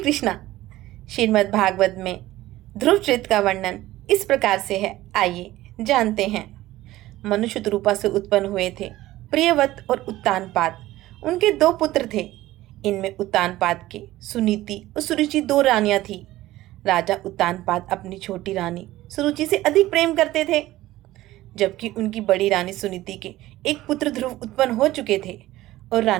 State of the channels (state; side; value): quieter; left; 16.2 dB